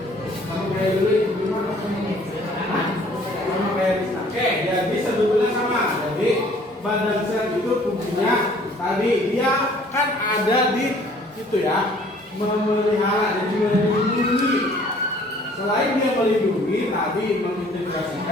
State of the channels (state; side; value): normal; both; correlation 0.56